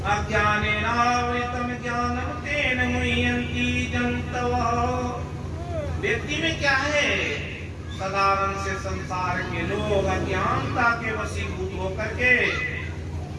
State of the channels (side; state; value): both; identical; correlation 1.00